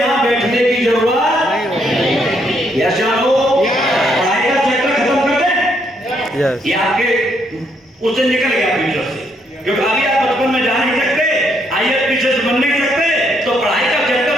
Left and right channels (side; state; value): both; normal; correlation 0.73